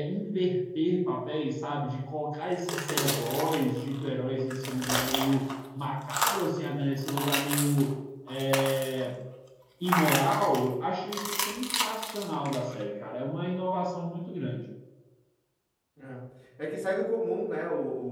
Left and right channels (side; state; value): both; identical; correlation 1.00